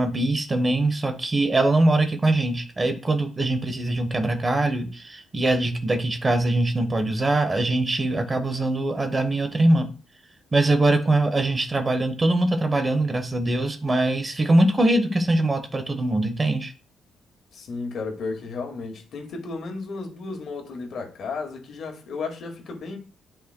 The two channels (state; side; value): normal; both; correlation 0.91